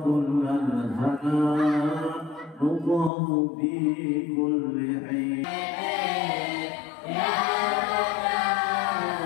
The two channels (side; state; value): right; drops out; at 3.1 s